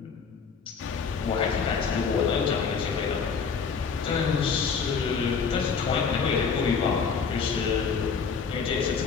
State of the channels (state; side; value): quieter; right; 5.7 dB